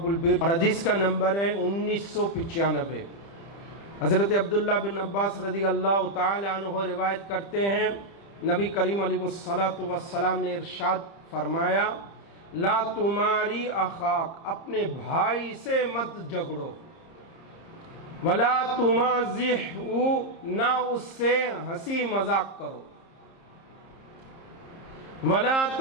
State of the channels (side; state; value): right; late; 30 ms